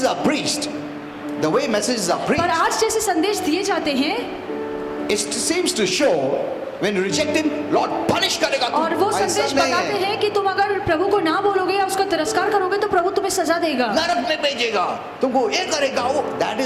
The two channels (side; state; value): both; identical; correlation 1.00